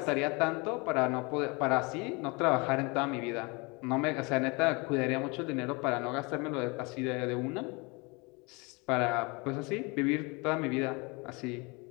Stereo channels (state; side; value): quieter; right; 28.4 dB